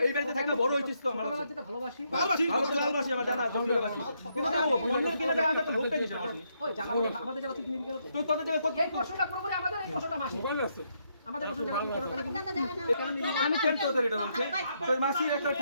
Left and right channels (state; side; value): inverted; both; correlation -0.76